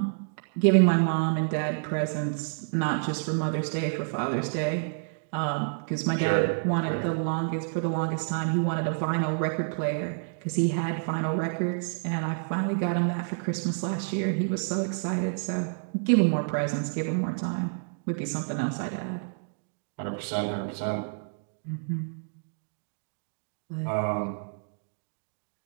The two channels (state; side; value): silent; left; digital silence